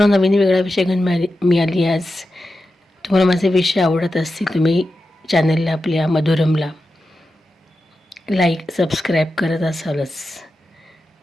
नवीन वेगळा विषय घेऊन मिळाली. आज तुम्हाला माझे विषय आवडत असतील, तुम्ही चॅनलला आपल्या मधुरमला लाईक सबस्क्राईब करत असालच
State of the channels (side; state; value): both; normal; correlation 0.91